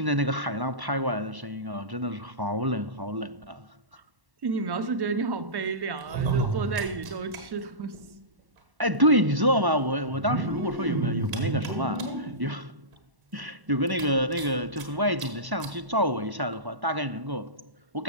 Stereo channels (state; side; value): late; left; 1.1 ms